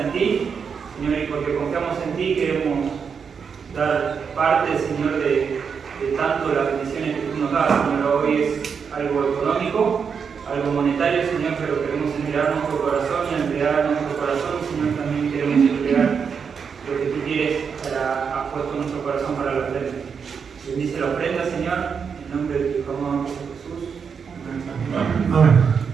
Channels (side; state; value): left; quieter; 6.3 dB